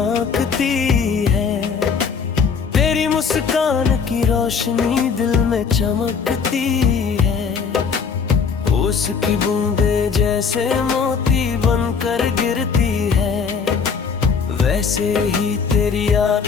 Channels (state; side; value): quieter; right; 5.9 dB